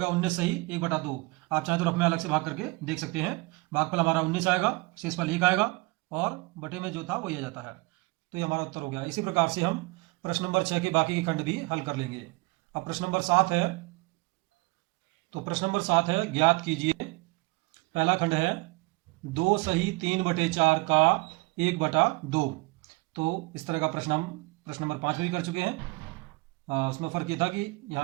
19 सही 1/2। आप चाहें तो रफ में अलग से भाग करके देख सकते हैं। भागफल हमारा 19 आएगा, शेषफल 1 आएगा और बटे में जो था वही आ जाता है। तो ये हमारा उत्तर हो गया। इसी प्रकार से हम प्रश्न नंबर 6 के बाकी के खंड भी हल कर लेंगे। अब प्रश्न नंबर 7 है। तो प्रश्न नंबर 7 है, ज्ञात कीजिए। पहला खंड है 2 सही 3/4 का 1/2। तो इस तरह का प्रश्न हम प्रश्न नंबर 5 में भी कर चुके हैं। उसमें फर्क ये था कि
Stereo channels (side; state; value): left; quieter; 25.4 dB